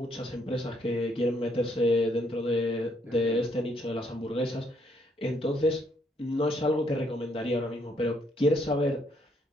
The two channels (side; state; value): both; normal; correlation 0.71